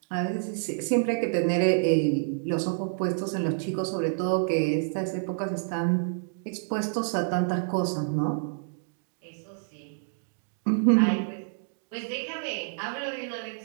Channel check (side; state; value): left; silent; digital silence